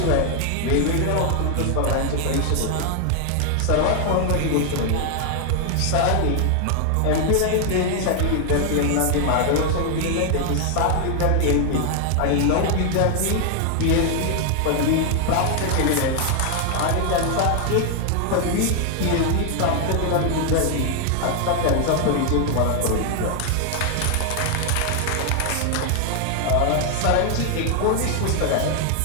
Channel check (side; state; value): both; different; correlation 0.00